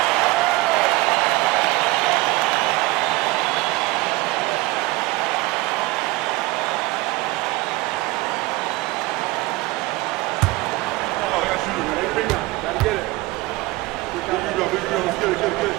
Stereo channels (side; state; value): left; quieter; 21.2 dB